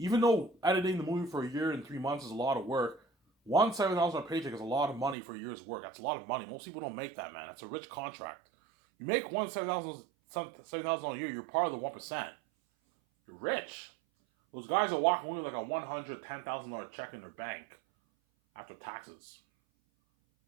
though editing the movie for a year and 3 months is a lot of work, $7,000 paycheck is a lot of money for a year's work. That's a lot of money. Most people don't make that, man. That's a rich contract. You make $7,000 a year, you're part of the 1%. You're rich. Those guys are walking away with like a $110,000 check in their bank after taxes.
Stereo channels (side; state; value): left; drops out; at 5.2 s